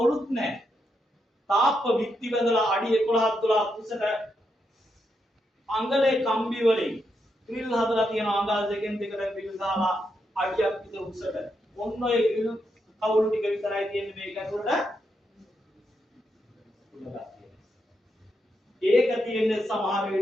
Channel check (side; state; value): both; normal; correlation 0.82